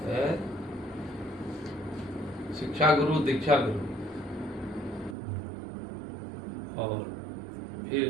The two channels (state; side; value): drops out; left; at 5.2 s